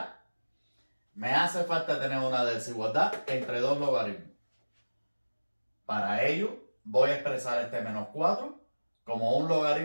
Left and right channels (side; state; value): both; inverted; correlation -1.00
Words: Me hace falta tener una desigualdad entre dos logaritmos. Para ello, voy a expresar este menos 4 como un